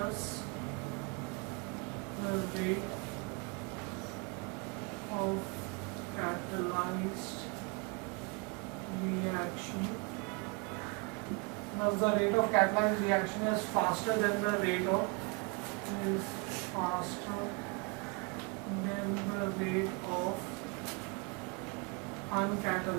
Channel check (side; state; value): left; quieter; 31.6 dB